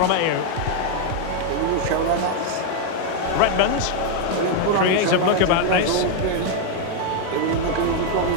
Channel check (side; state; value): both; different; correlation 0.00